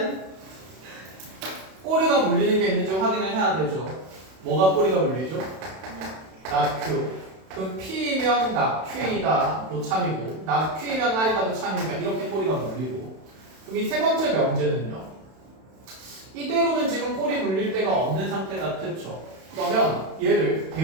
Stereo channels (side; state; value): left; late; 32 ms